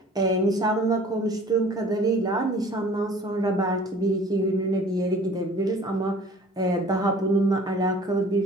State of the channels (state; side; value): normal; both; correlation 0.48